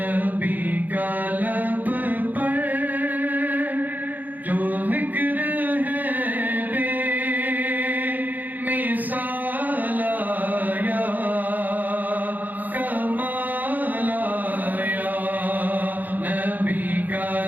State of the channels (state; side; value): late; left; 0.084 ms